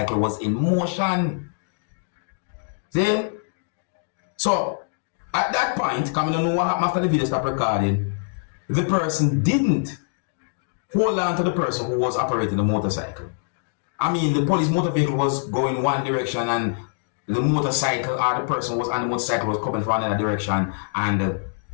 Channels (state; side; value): silent; right; digital silence